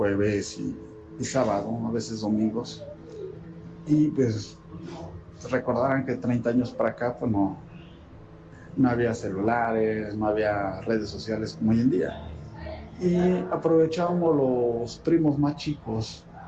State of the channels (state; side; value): identical; both; correlation 1.00